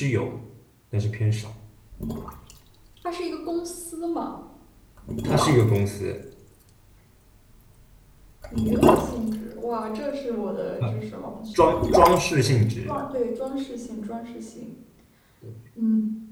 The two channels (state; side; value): identical; both; correlation 1.00